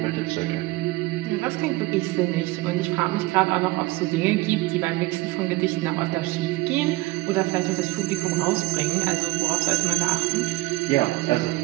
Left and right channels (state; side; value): quieter; left; 20.6 dB